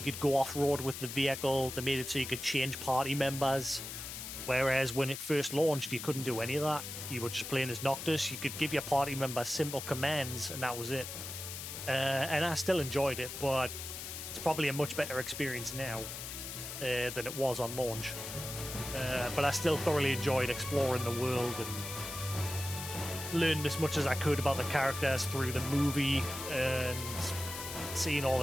go off-road with the vehicle. They made it so you could change party members. Whereas when it first launched, you couldn't do any of that. You were just playing as Noctis. You could give your party members simple commands, and that was it. And I still enjoyed it, but it's probably a much better experience now than it was on launch. But I still thoroughly enjoyed exploring the world and learned as much as I could about the characters through the movie, and seeing all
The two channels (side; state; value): left; noise; hiss, 8 dB below the sound